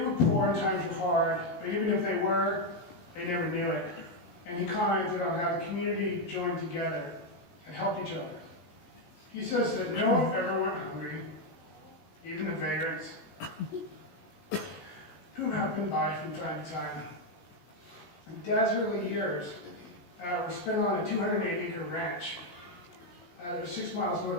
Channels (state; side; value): late; right; 17 ms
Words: poor and times were hard, but even if they were, they never knew it. And he commented on how the community joined together and helped each other. He says that no one ever went hungry, even the vagrants, who happened by from time to time. In Dad's early years were spent on a 208-acre ranch. It was 6 miles